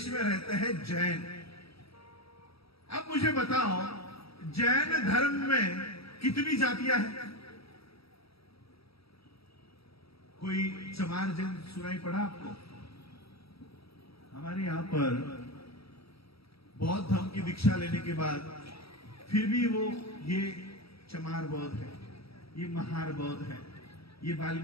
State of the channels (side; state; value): right; late; 0.76 ms